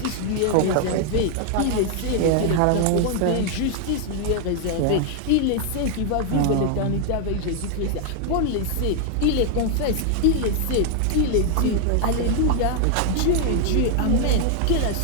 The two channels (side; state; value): both; different; correlation 0.00